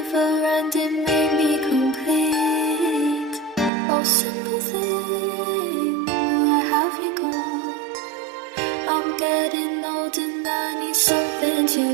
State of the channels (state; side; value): drops out; left; at 3.7 s